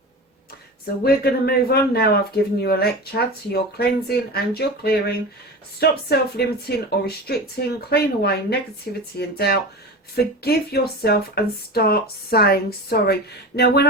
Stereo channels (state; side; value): normal; both; correlation 0.29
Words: So we're going to move on now. I've given you a lecture to your cleansing and your clearing. Stop self-limiting or restricting. Clean away negativity and doubt. Forgive yourself and start saying sorry. Now, when